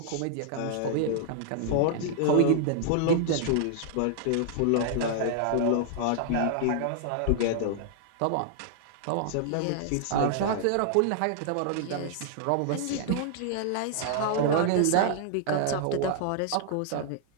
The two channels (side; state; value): both; different; correlation -0.01